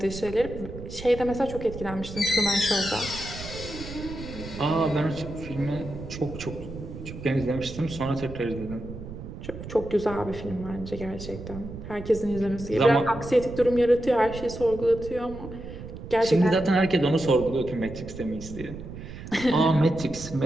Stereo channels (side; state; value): right; noise; rumble, 11 dB below the sound